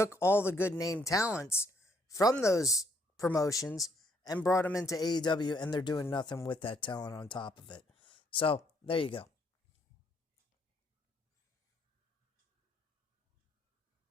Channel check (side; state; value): both; normal; correlation 0.70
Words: all the good name talents from those promotions and brought them into AEW, and they're doing nothing with that talent on top of it. So, there you go.